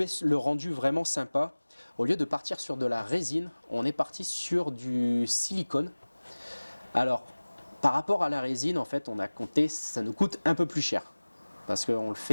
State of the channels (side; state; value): both; inverted; correlation -1.00